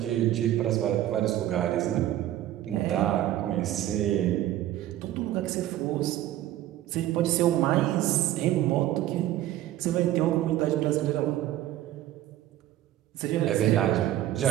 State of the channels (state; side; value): quieter; left; 13.6 dB